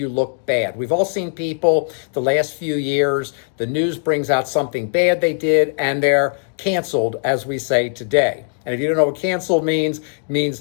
look bad. We've all seen people the last few years, the news brings out something bad they did and they're canceled, as we say today. And if you don't know what canceled means, it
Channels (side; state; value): right; silent; digital silence